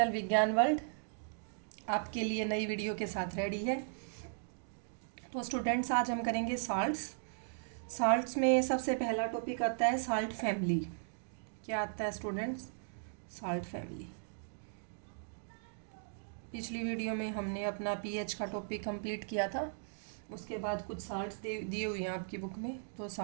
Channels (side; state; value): left; silent; digital silence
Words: विज्ञान world आपके लिए नई वीडियो के साथ रेडी है। तो स्टूडेंट्स, आज हम करेंगे साल्ट्स में सबसे पहला टॉपिक आता है साल्ट फैमिली। क्या आता है स्टूडेंट्स? Salt family. पिछली वीडियो में हमने अपना पीएच का टॉपिक कंप्लीट किया था। उसके बाद कुछ साल्ट्स दिए हुए हैं आपकी बुक में, तो